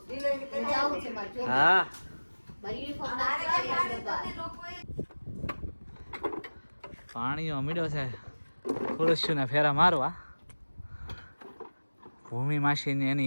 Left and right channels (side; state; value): both; inverted; correlation -1.00